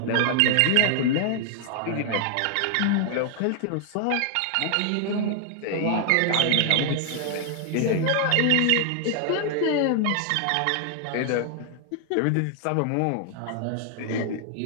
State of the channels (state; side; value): different; both; correlation 0.00